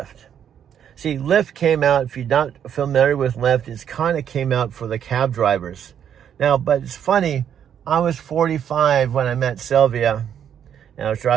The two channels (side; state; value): left; quieter; 9.0 dB